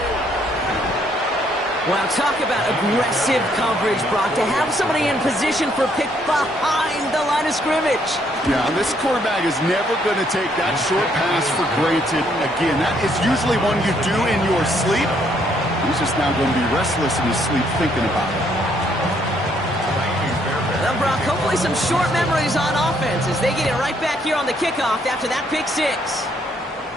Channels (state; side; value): normal; both; correlation 0.69